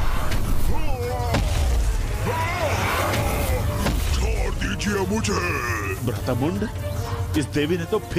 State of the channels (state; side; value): identical; both; correlation 1.00